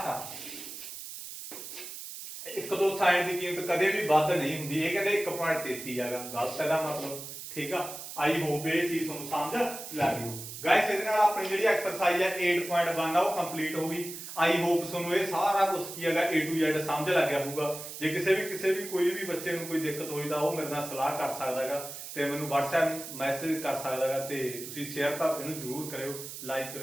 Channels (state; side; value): noise; right; hiss, 10 dB below the sound